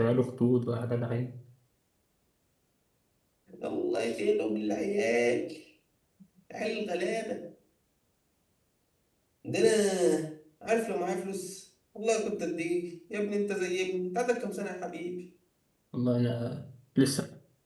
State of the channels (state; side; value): identical; both; correlation 1.00